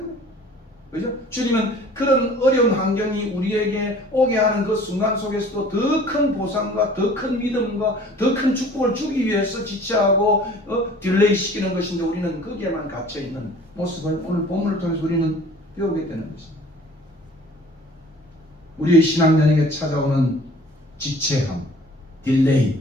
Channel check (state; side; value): normal; both; correlation 0.49